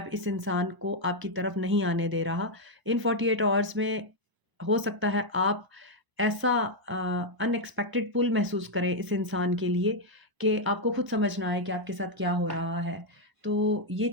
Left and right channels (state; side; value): late; left; 1.0 ms